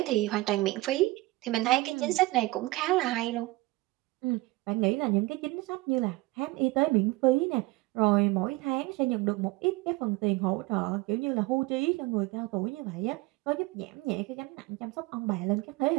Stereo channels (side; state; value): left; quieter; 20.6 dB